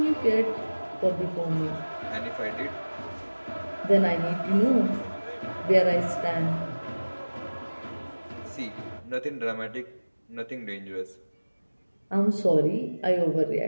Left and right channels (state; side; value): inverted; both; correlation -1.00